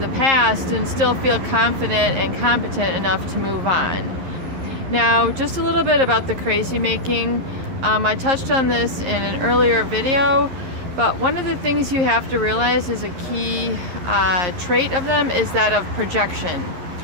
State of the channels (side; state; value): left; late; 11 ms